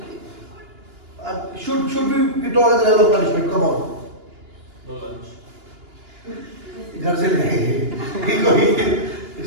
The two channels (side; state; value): left; late; 2.9 ms